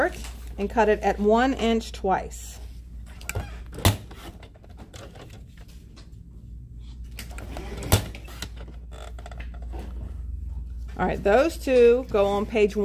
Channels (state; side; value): identical; both; correlation 1.00